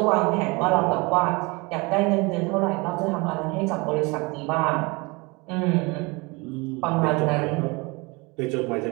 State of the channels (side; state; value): left; quieter; 26.6 dB